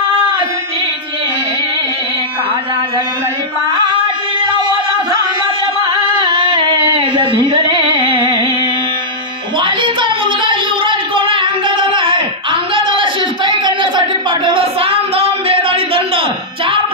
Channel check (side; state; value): both; normal; correlation -0.10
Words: वालीचा मुलगा युवराज कोण आहे? अंगदाला आहे. अंगदाला शिष्टाई करण्यासाठी पाठवलं. साम दाम वेद आणि दंड 4